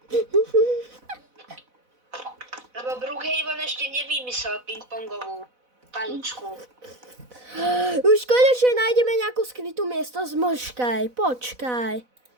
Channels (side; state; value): left; late; 4.0 ms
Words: Lebo Brookhaven ešte nevymyslel ping-pongovú paličku. Už konečne nájdeme nejakú skrytú miestnosť, počkaj.